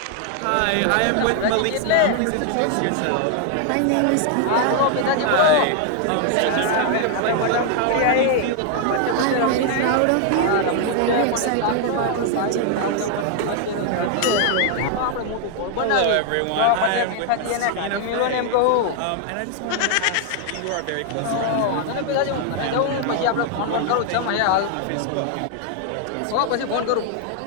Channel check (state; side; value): different; both; correlation 0.00